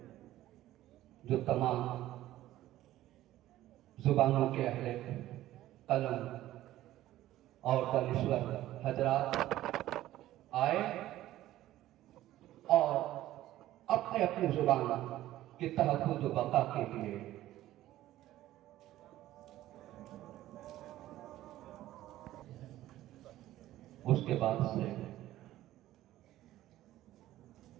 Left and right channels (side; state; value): left; quieter; 14.5 dB